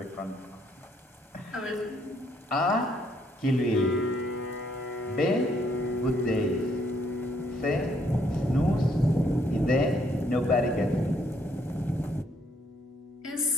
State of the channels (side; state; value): both; normal; correlation 0.70